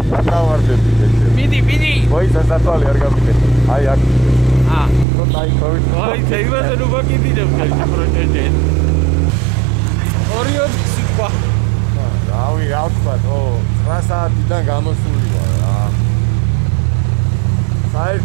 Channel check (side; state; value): left; drops out; at 5.1 s